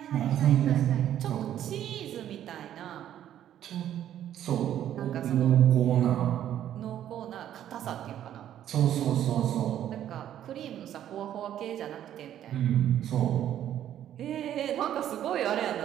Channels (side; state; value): left; quieter; 11.1 dB